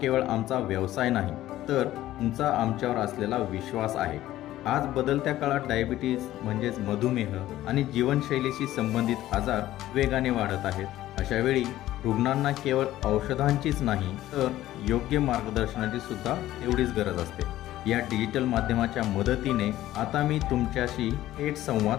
आमचा व्यवसाय नाही, तर तुमचा आमच्यावर असलेला विश्वास आहे। आज बदलत्या काळात डायबिटीज म्हणजेच मधुमेह आणि जीवनशैलीशी संबंधित आजार वेगाने वाढत आहेत। अशा वेळी रुग्णांना केवळ औषधांचीच नाही, तर योग्य मार्गदर्शनाची सुद्धा तेवढीच गरज असते। या डिजिटल माध्यमाच्या मदतीने आता मी तुमच्याशी थेट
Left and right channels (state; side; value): quieter; right; 14.5 dB